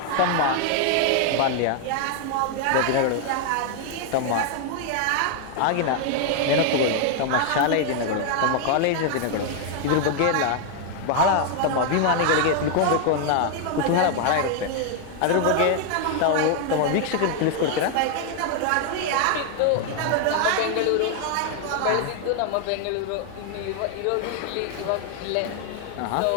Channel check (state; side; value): different; both; correlation 0.00